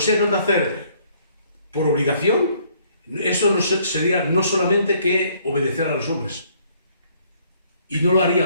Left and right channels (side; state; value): both; inverted; correlation -0.64